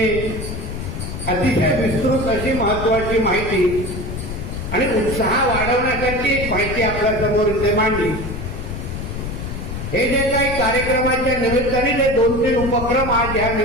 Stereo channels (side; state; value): left; noise; rumble, 6 dB below the sound